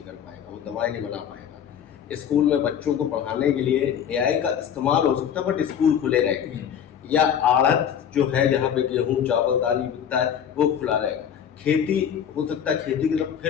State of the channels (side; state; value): right; quieter; 8.7 dB